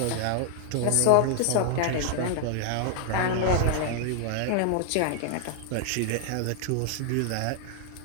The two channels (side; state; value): both; different; correlation 0.00